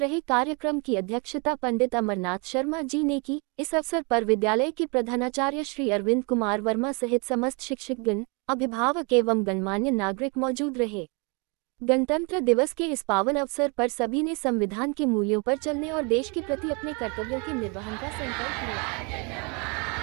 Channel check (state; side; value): quieter; left; 32.3 dB